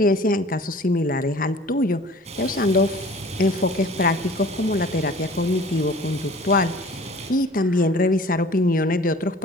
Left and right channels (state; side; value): normal; both; correlation 0.46